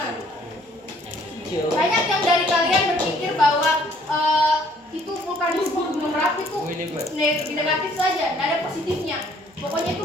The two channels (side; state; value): both; normal; correlation 0.61